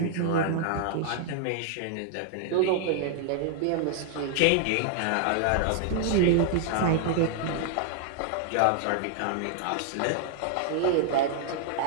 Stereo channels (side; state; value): both; different; correlation -0.01